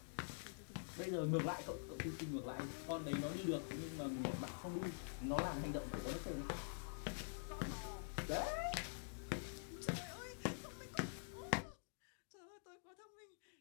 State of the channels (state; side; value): silent; right; digital silence